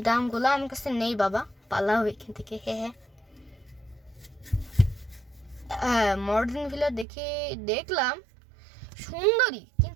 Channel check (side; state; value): left; drops out; at 7.1 s